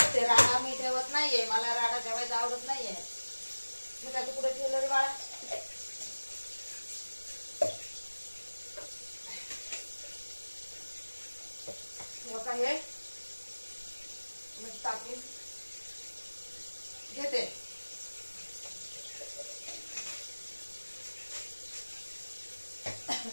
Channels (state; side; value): inverted; both; correlation -1.00